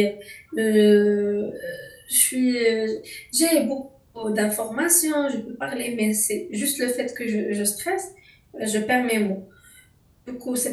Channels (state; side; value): identical; both; correlation 1.00